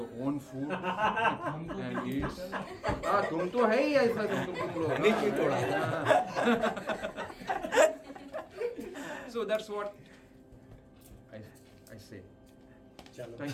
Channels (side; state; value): both; identical; correlation 1.00